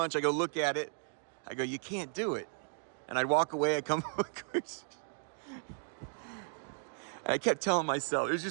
I go look at it. I go, you can't do it. And I'd walk away, I come and I kept telling myself,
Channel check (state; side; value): silent; left; 54 dB below the other